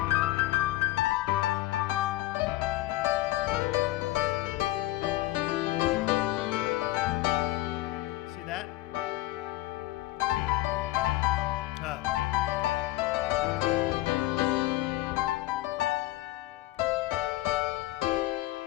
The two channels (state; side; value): quieter; right; 17.0 dB